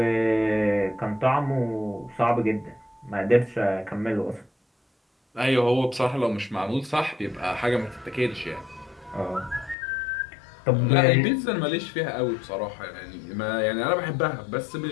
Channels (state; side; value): drops out; right; at 9.8 s